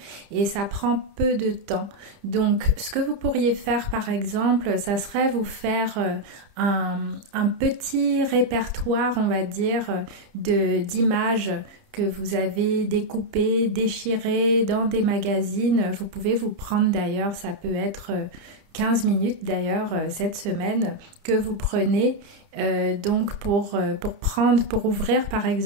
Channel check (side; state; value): left; late; 30 ms